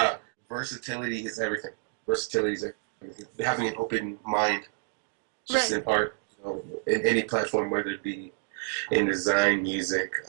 Versatility is everything. Versatility is everything. Having an open mind, just Right. in art, in any platform, whether it be in design, music,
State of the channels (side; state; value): left; silent; 59 dB below the other